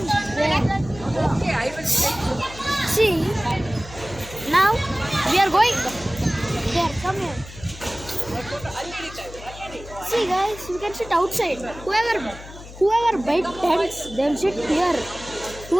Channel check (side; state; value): left; noise; hum, 15 dB below the sound